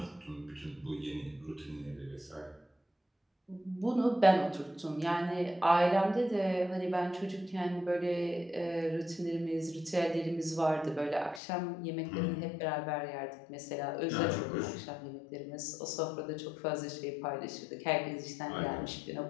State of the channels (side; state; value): right; drops out; at 11.4 s